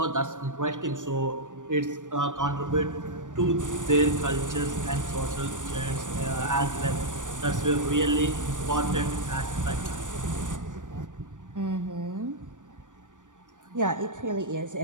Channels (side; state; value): left; late; 0.87 ms